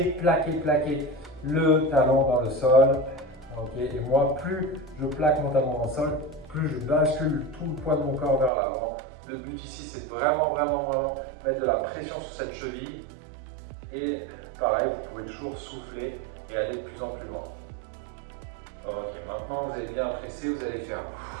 le talon dans le sol. Okay. Et moi, plus je plaque mon talon dans le sol, plus je bascule tout le poids de mon corps vers l'avant. Le but ici, c'est de vraiment mettre de la pression sur cette cheville. Et pareil, vous pouvez toujours souffler et aller de plus en plus loin. Ok, maintenant vous avez bien pressé, vous allez faire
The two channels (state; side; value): drops out; left; at 8.5 s